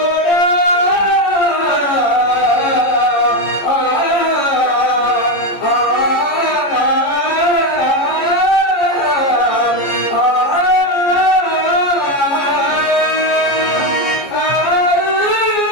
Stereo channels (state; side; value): late; right; 14 ms